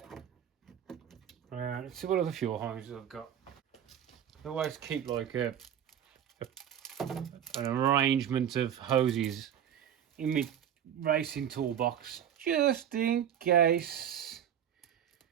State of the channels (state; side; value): quieter; left; 9.6 dB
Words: Let's see what other fuel hoses I've got. I always keep like an arrangement of hoses in my racing toolbox, just in case